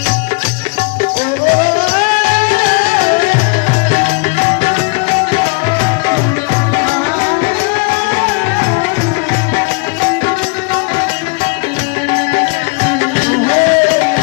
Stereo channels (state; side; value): quieter; right; 31.4 dB